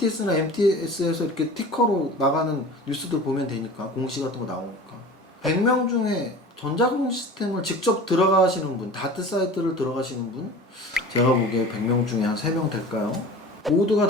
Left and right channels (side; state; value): both; normal; correlation 0.39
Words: MTS에서 이렇게 티커로 나가는 뉴스들 보면 되니까 공시 같은 거 나오니까 100명 중에 전자공시 시스템을 직접 들어가시는 분, 다트 사이트를 들어가시는 분 제가 보기에 100명 중에 한 3명 될까요? 모두가